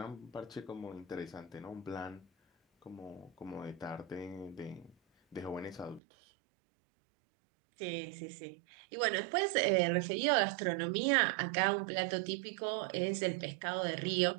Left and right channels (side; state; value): left; drops out; at 6.0 s